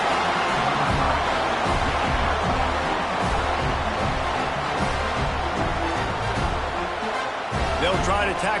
They'll try to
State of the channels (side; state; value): both; identical; correlation 1.00